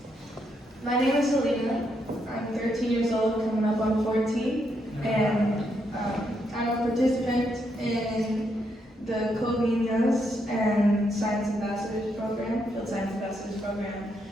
My name is Selena. I'm 13 years old, coming up on 14, and I'm a participant in the Covenias and Science Ambassadors Program, Field Science Ambassadors Program,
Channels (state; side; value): normal; both; correlation 0.78